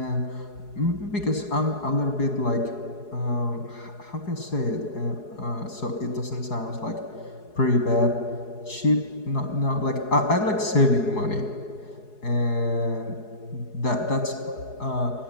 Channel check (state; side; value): late; right; 4.8 ms